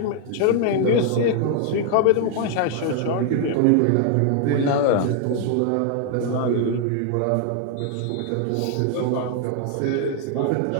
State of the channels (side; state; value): both; different; correlation 0.00